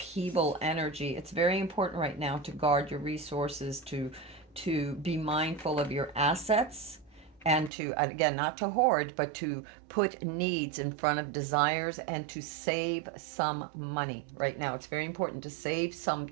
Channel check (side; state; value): left; drops out; at 7.7 s